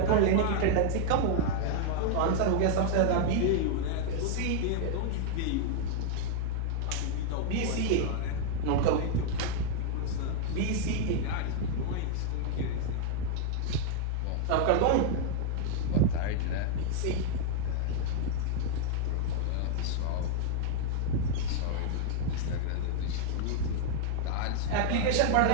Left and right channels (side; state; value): both; different; correlation -0.01